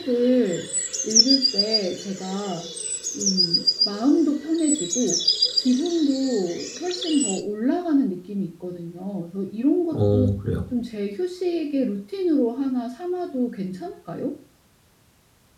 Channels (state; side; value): identical; both; correlation 1.00